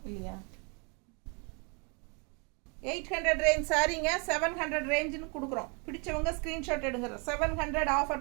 இல்லையா. 800 ரேஞ்ச் சாரிங்க 700 ரேஞ்சுன்னு கொடுக்குறோம். பிடிச்சவங்க ஸ்க்ரீன்ஷாட் எடுங்க. 700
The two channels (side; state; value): left; quieter; 33.9 dB